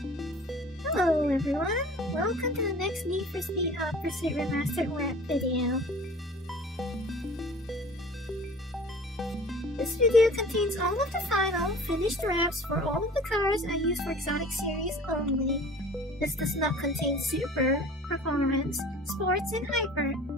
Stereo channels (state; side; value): normal; both; correlation 0.45